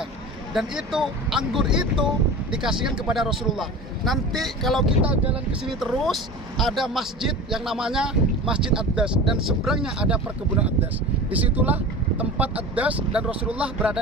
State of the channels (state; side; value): normal; both; correlation 0.33